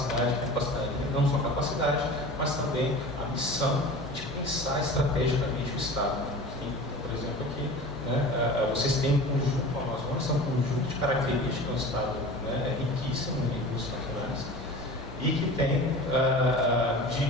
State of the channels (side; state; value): both; normal; correlation 0.36